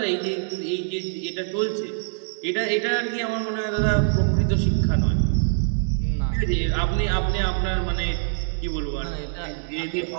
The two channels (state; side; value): silent; left; digital silence